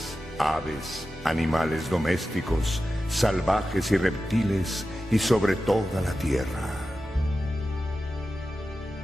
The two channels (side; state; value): both; normal; correlation 0.93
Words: aves, animales domésticos, salvajes y reptiles, y sobre toda la tierra.